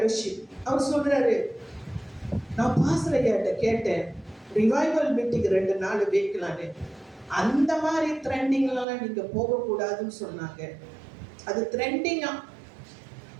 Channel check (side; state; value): left; drops out; at 8.8 s